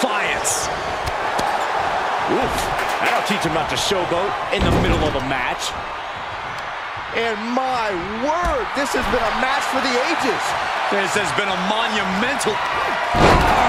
Oof. That'll teach him not to showboat in the middle of a match. And my word, this has been a match for the ages. This has been a monumental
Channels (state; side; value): identical; both; correlation 1.00